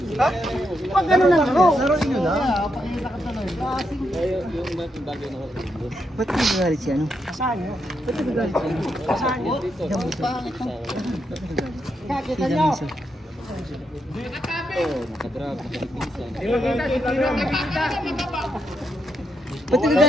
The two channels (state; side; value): normal; both; correlation 0.81